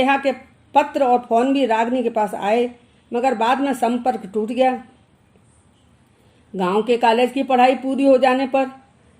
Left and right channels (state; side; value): identical; both; correlation 1.00